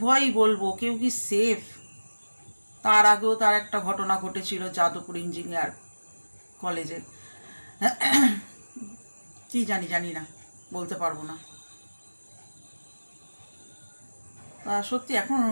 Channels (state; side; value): inverted; both; correlation -1.00